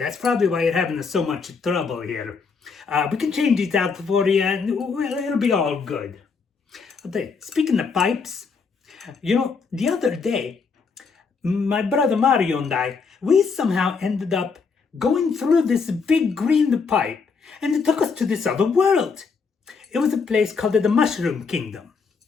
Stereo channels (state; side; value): quieter; right; 5.1 dB